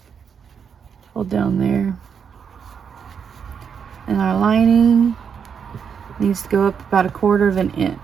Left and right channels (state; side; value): quieter; left; 7.0 dB